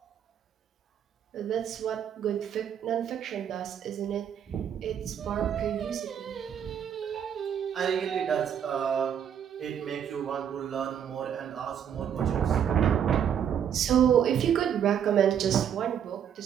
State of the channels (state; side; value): quieter; left; 8.8 dB